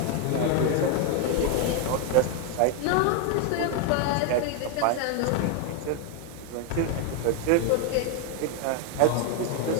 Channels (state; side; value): different; both; correlation 0.01